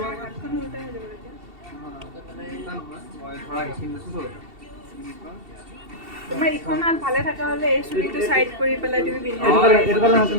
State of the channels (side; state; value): left; late; 2.7 ms